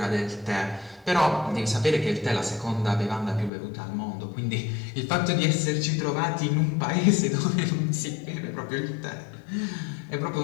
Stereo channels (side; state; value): right; drops out; at 3.5 s